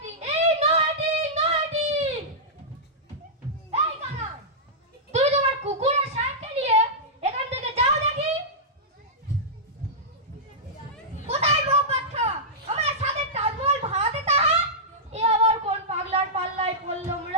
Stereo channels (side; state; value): both; normal; correlation -0.12